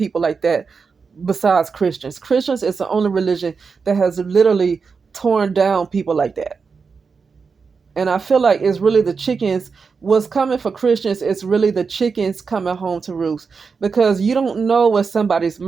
like that besides Christians. Christians is the only religion that has literally torn down people like that. And I feel like it's really the chickens. What's coming for Christians is really the chickens coming home to roost, because you don't know where somebody's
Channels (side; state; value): left; quieter; 5.2 dB